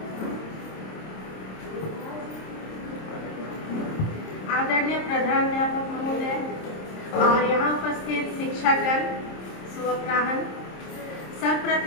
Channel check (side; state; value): right; late; 26 ms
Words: आदरणीय प्रधानाध्यापक महोदय और यहाँ उपस्थित शिक्षकगण, शुभ अपराह्न।